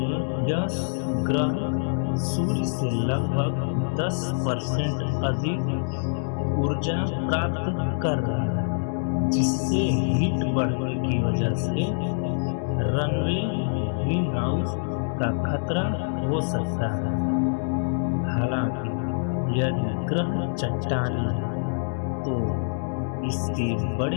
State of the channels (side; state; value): right; silent; digital silence